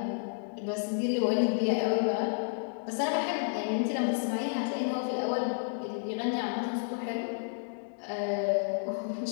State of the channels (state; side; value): silent; right; digital silence